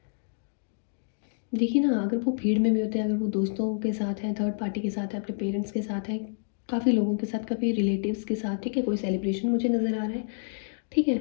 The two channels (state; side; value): silent; right; digital silence